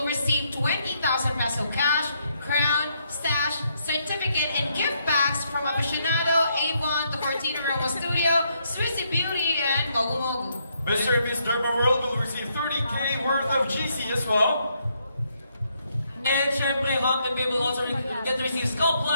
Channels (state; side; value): inverted; both; correlation -0.75